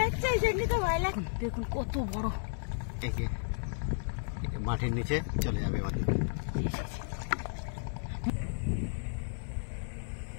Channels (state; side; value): silent; right; digital silence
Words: এই জন্য তো ভয় লাগে। দেখুন কত বড়, মাটির নিচে চলে যাবে আমাদের।